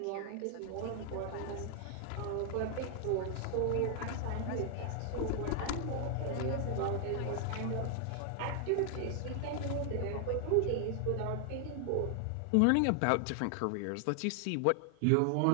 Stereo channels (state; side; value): different; both; correlation 0.00